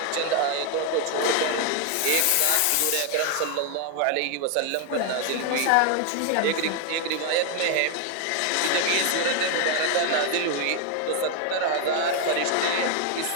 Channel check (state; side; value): different; both; correlation 0.00